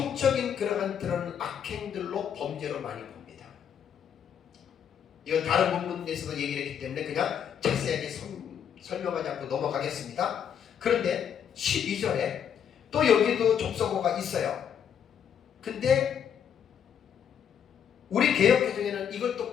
그런 악행들로 범죄로 많이 봅니다. 이건 다른 본문에서도 얘기를 했기 때문에 그냥 자세하게 설명하지 않고 넘어가겠습니다. 그런데 12절에 또 여기도 접속어가 있어요. 근데 우리 개역개정에는 이걸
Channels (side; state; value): right; quieter; 8.4 dB